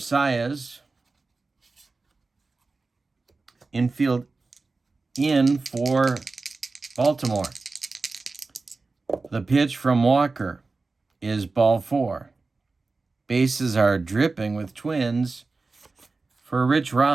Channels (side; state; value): left; quieter; 3.8 dB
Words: Infield in for Baltimore. The pitch from Walker is ball 4. Bases are dripping with Twins for Rich